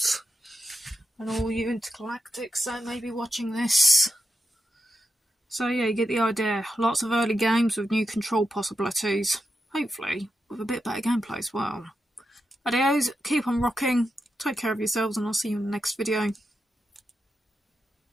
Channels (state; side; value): normal; both; correlation 0.87